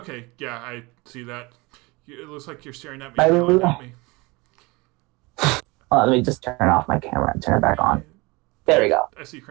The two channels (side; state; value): left; quieter; 24.8 dB